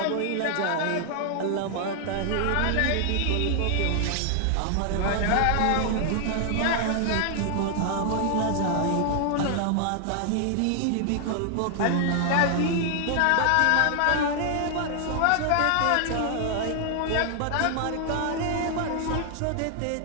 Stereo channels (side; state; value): both; different; correlation 0.00